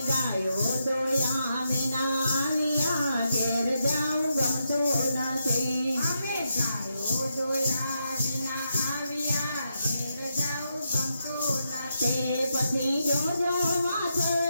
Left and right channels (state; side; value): inverted; both; correlation -0.83